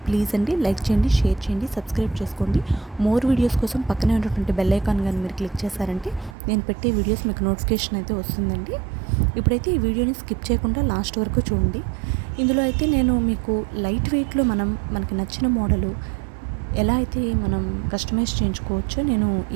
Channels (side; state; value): left; drops out; at 6.4 s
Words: ప్లీజ్ అండి లైక్ చేయండి, షేర్ చేయండి, సబ్స్క్రైబ్ చేసుకోండి. మోర్ వీడియోస్ కోసం పక్కనే ఉన్నటువంటి బెల్ ఐకాన్ కానీ మీరు క్లిక్ చేశారంటే నేను పెట్టే వీడియోస్ మీకు నోటిఫికేషన్ అయితే వస్తుందండి. ఇప్పుడైతే ఈ వీడియోని స్కిప్ చేయకుండా లాస్ట్ వరకు చూడండి. ఇందులో అయితే నేను మీకు లైట్ వెయిట్లో మనకి నచ్చిన మోడలు ఎలా అయితే మనం కస్టమైజ్ చేయించుకోవచ్చో నేను